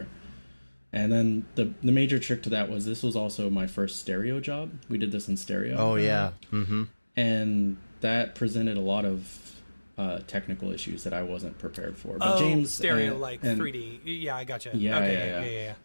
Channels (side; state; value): both; inverted; correlation -1.00